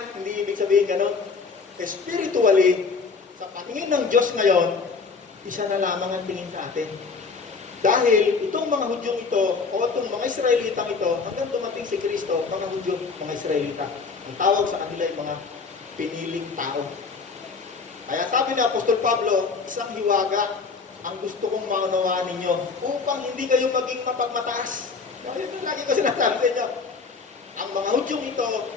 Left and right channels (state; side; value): quieter; right; 4.8 dB